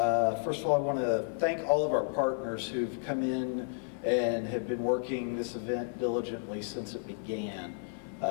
of all, I want to thank all of our partners who've come in and have been working this event diligently since it began.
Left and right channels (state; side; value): silent; right; 56 dB below the other